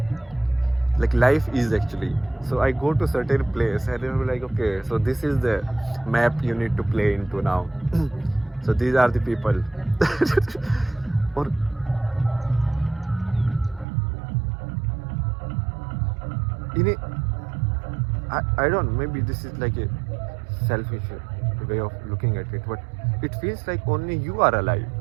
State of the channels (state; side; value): drops out; left; at 13.9 s